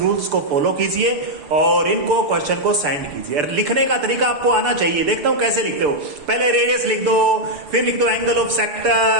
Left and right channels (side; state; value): left; late; 6.8 ms